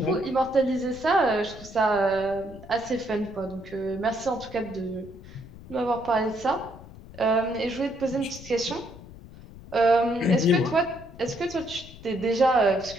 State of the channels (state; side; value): noise; left; rumble, 17 dB below the sound